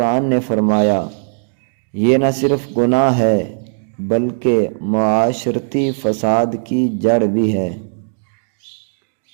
نے فرمایا، یہ نہ صرف گناہ ہے بلکہ معاشرتی فساد کی جڑ بھی ہے۔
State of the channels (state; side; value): silent; left; digital silence